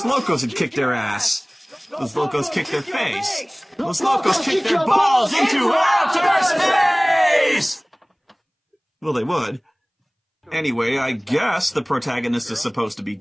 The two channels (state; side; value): identical; both; correlation 1.00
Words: Locos had kicked their ass. Los Locos kicked their face. Los Locos kicked their balls into outer space! Well, they would. Anyway, I guess the protagonist is supposed to be